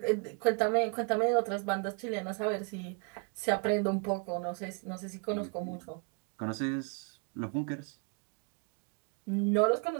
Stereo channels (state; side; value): quieter; left; 36.1 dB